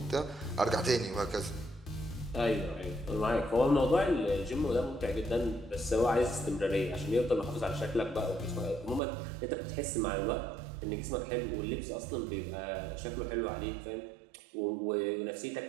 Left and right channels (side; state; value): left; drops out; at 9.0 s